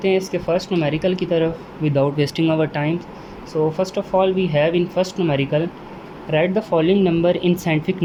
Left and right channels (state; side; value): identical; both; correlation 1.00